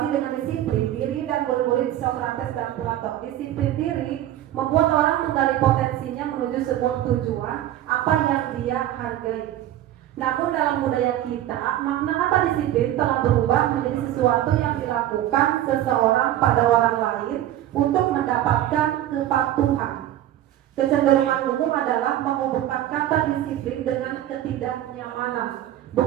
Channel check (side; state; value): left; quieter; 12.8 dB